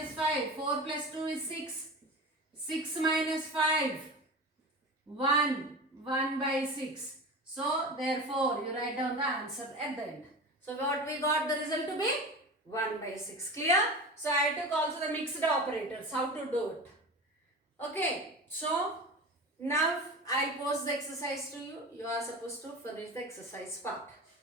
5. 4 plus 2 is 6. 6 minus 5. 1. 1 by 6. So therefore you write down the answer at the end. So what we got the result to be? 1 by 6. Clear? So I took also the mixed operators. How to do it? Okay. So now I'll post the exercise to you. You are supposed to finish the exercise part.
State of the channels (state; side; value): normal; both; correlation 0.30